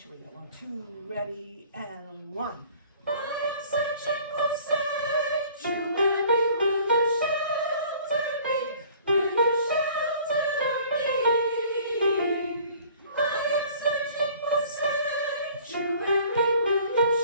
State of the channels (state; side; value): inverted; both; correlation -0.51